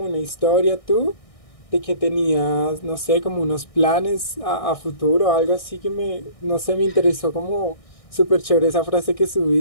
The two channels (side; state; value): right; late; 1.6 ms